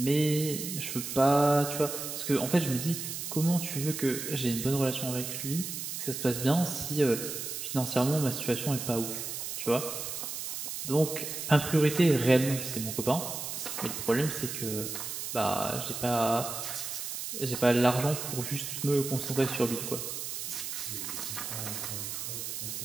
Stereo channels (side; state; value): right; noise; hiss, 5 dB below the sound